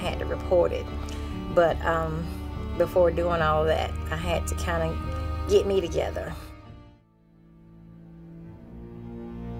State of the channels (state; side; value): identical; both; correlation 1.00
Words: to report it. But before doing all that, I had to kind of get me together.